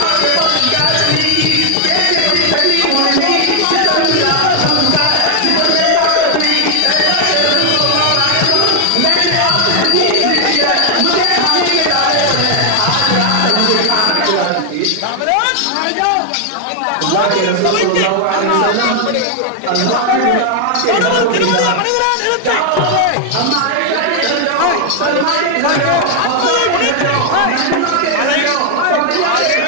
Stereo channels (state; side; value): different; both; correlation 0.00